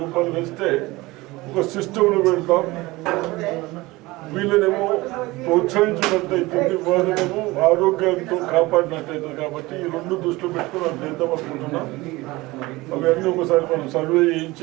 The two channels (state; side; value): quieter; left; 20.8 dB